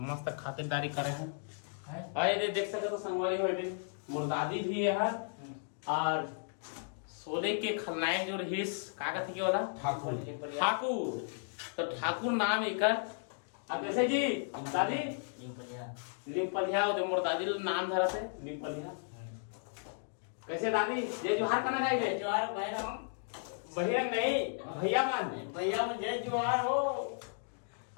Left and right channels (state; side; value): silent; right; digital silence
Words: मस्त खातिरदारी करे हैं। और ये देख सकते तो संगवारी हो मोर दादी भी है और सोने के खलनायक जो रहीस का कहते के वाला ठाकुर। तो ठाकुर नाम एकर। अब कैसे जी दादी निपलिया मोर दादी नाम धरा थे निपलिया। कैसे दादी जय जोहार करना जाएंगे? जोहार भैया नहीं भैया मन जय जोहार हो।